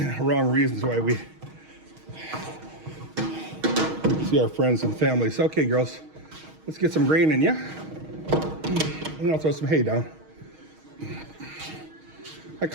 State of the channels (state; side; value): late; left; 6.4 ms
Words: Wrong reasons why we see our friends and families. Okay, girls, let's get some grain in, yeah? And I'll throw some hay down. I